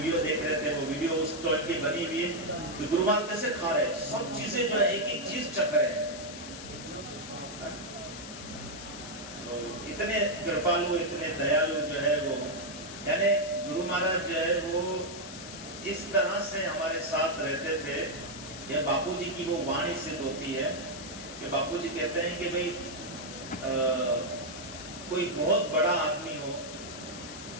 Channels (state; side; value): noise; left; hiss, 12 dB below the sound